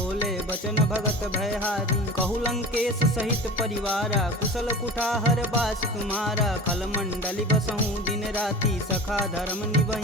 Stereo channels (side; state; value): both; normal; correlation 0.35